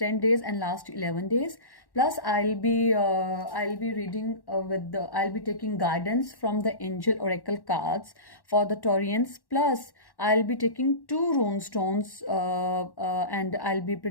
days and last 11 days. Plus I'll be reading I'll be taking guidance from the angel oracle cards for the Taurians. Plus I'll be taking two rune stones and I'll be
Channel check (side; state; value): right; late; 1.1 ms